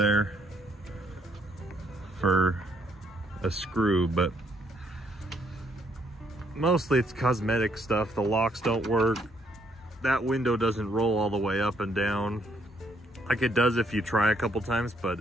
for a screw, but mostly it's cosmetic stuff. The locks don't work. That window doesn't roll all the way up and down. Like it does if you try a couple times,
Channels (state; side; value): normal; both; correlation 0.70